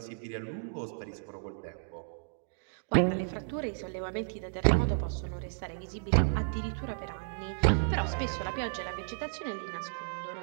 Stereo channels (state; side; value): silent; left; digital silence